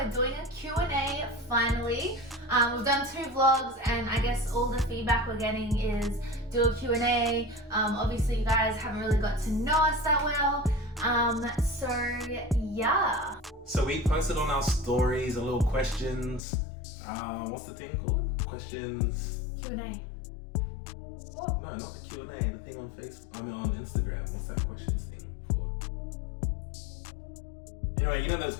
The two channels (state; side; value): drops out; right; at 16.4 s